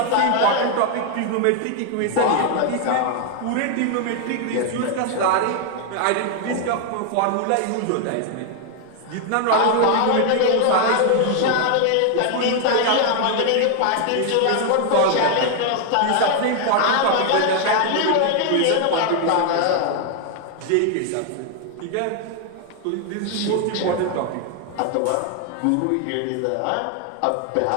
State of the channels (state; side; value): different; both; correlation 0.00